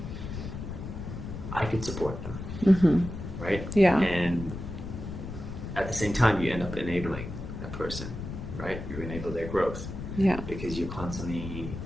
I could support them, right? Yeah. And at the same time, you end up enabling that person, right? You enable their growth. Yeah. Because you're constantly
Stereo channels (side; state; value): left; noise; rumble, 8 dB below the sound